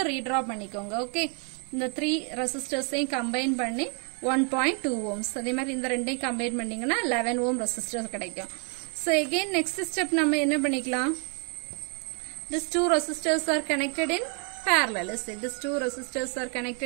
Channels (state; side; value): quieter; left; 37.1 dB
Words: redraw பண்ணிக்கோங்க. Okay, இந்த 3 resistors combine பண்ணி 1.2 ohms. அதே மாதிரி இந்த ரெண்டையும் combine பண்ணீங்கன்னா 11 ohm resistor கிடைக்கும். So again next step நம்ம என்ன பண்ணிக்கலாம்? These two resistors are connected in parallel. Let's say these two resistors are